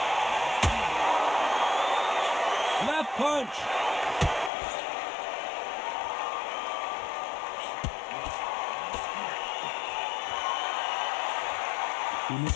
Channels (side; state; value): right; drops out; at 4.5 s